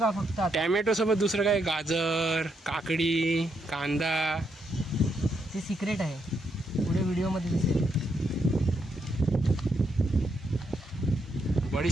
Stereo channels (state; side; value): normal; both; correlation 0.78